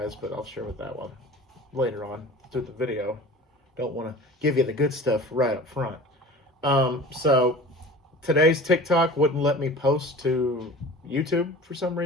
but I'll share with that one later on through the video. Don't want to give you the good stuff right up front. So today's TikTok wouldn't let me post to YouTube for some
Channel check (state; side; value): normal; both; correlation 0.39